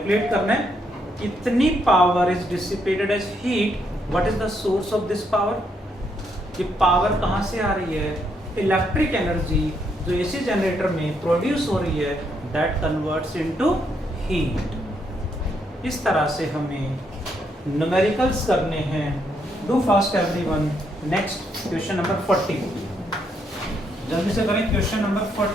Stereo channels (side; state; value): both; normal; correlation 0.75